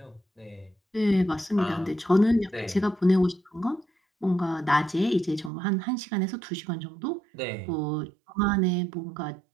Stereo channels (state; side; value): drops out; left; at 5.5 s